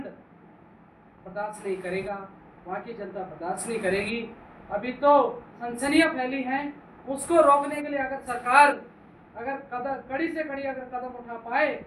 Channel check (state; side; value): identical; both; correlation 1.00